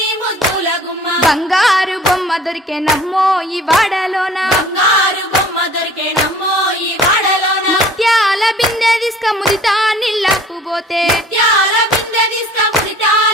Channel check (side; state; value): both; normal; correlation 0.50